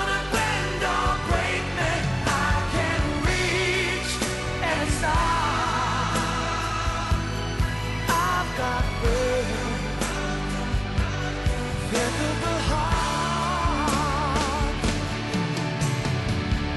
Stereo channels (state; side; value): identical; both; correlation 1.00